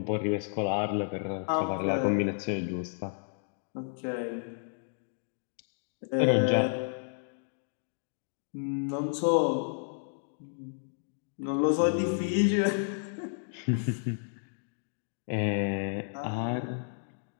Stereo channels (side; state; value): right; silent; digital silence